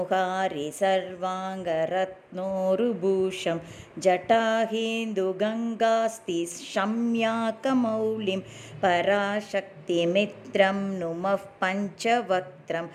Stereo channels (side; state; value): both; identical; correlation 1.00